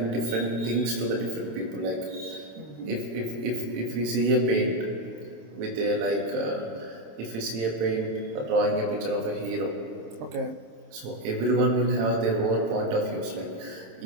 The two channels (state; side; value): late; left; 27 ms